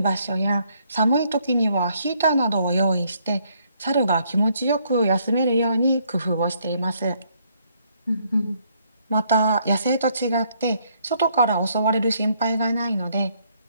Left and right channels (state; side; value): inverted; both; correlation -0.69